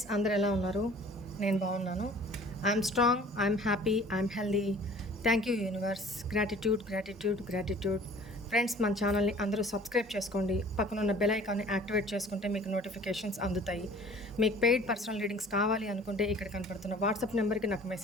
అందరు ఎలా ఉన్నారు? నేను బాగున్నాను. I'm strong, I'm happy, I'm healthy. Thank you universe. Gratitude gratitude gratitude. Friends, మన ఛానల్ని అందరూ సబ్స్క్రైబ్ చేసుకోండి. పక్కనున్న బెల్ ఐకాన్ని యాక్టివేట్ చేసుకుంటే మీకు నోటిఫికేషన్స్ అందుతాయి. మీకు పెయిడ్ పర్సనల్ రీడింగ్స్ కావాలి అనుకుంటే ఇక్కడ కనపడుతున్న వాట్సాప్ నెంబర్కి నాకు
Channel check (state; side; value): normal; both; correlation 0.48